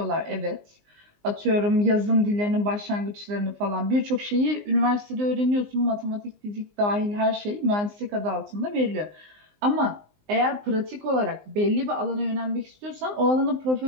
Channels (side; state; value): left; late; 19 ms